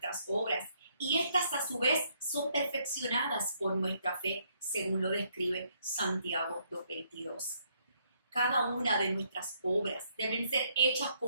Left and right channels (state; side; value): inverted; both; correlation -0.71